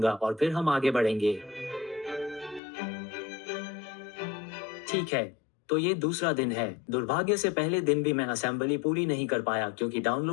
और फिर हम आगे बढ़ेंगे। ठीक है, तो ये दूसरा दिन है। दुर्भाग्य से पहले दिन भी मैं असेंबली पूरी नहीं कर पाया क्योंकि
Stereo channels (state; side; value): drops out; right; at 2.6 s